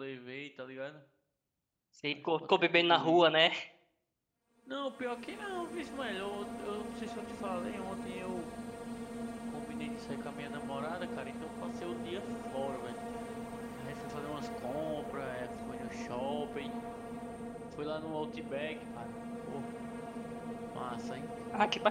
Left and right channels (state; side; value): identical; both; correlation 1.00